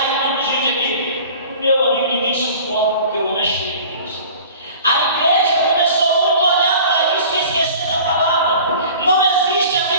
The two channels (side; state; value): both; inverted; correlation -0.43